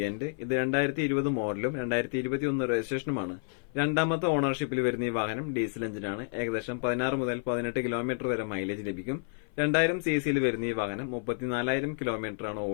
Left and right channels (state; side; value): silent; right; 55 dB below the other